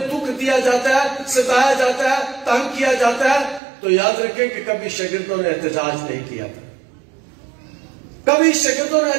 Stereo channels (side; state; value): left; drops out; at 3.6 s